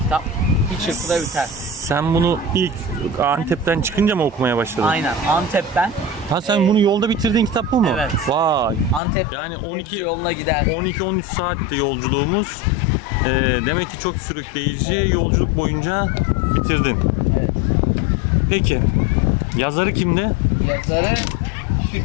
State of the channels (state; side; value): drops out; right; at 9.0 s